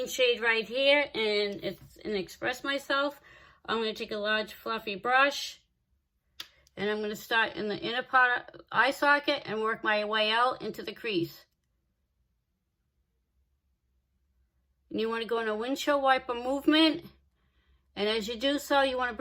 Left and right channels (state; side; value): identical; both; correlation 1.00